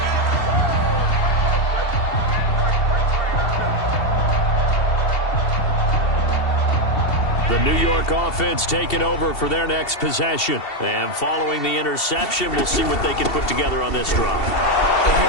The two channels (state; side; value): late; right; 2.7 ms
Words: The New York offense taking over for their next possession. And following the interception, we'll see what they can put together on this drive. I